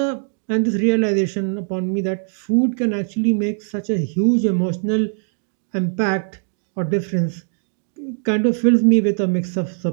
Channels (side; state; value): left; silent; digital silence